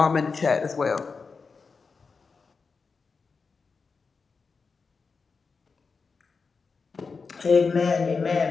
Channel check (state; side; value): quieter; right; 4.8 dB